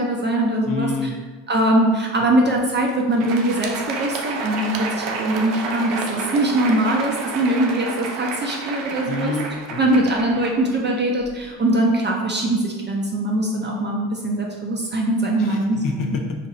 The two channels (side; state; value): both; normal; correlation 0.36